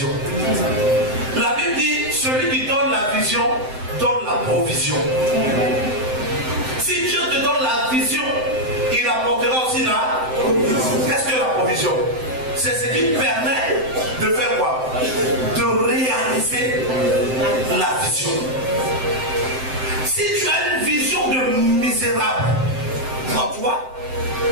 La Bible dit, celui qui donne la vision, donne la provision. Si Dieu te donne la vision, il apportera aussi la provision. Qu'est-ce que la provision? C'est ce qui permet de faire quoi? De réaliser la vision. Si tu as une vision de misérable en toi,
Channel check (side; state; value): left; late; 7.8 ms